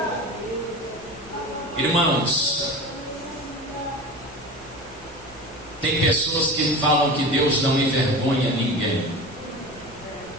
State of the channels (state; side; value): normal; both; correlation 0.32